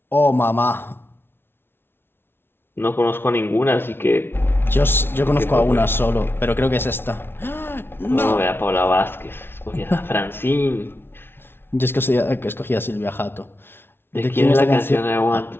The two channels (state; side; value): late; right; 0.11 ms